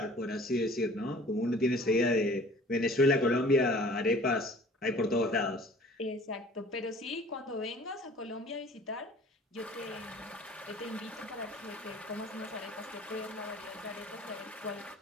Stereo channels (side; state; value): both; normal; correlation 0.49